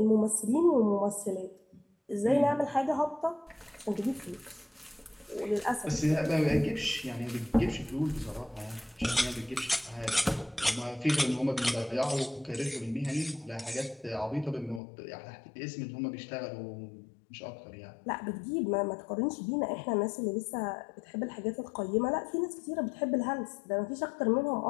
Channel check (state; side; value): drops out; right; at 14.8 s